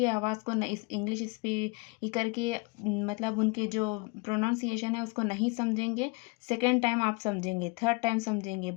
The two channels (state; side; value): quieter; right; 27.7 dB